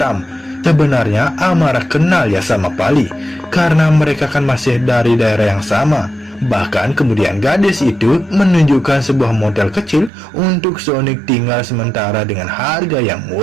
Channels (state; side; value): drops out; left; at 10.1 s